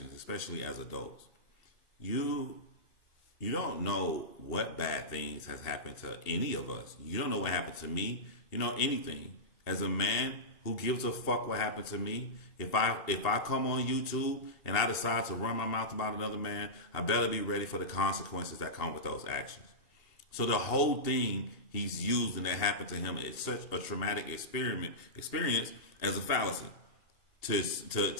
especially as adults. You don't know what bad things has happened to any of us. You don't know what happened to me. You know anything. As a man who gives a fuck what happened to me, if I come on YouTube and I decide to run my mouth about another man, I better be ready for the consequences that come with those actions. So the whole thing he's using that happened to him is such a traumatic experience as a fallacy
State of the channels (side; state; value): right; late; 2.7 ms